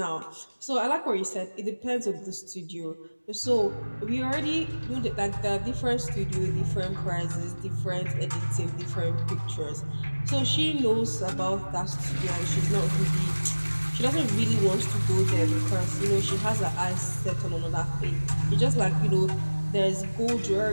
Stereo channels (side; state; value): both; inverted; correlation -1.00